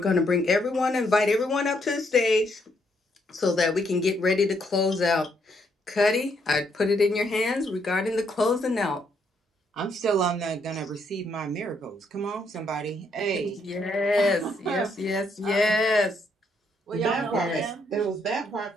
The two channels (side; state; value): both; normal; correlation 0.73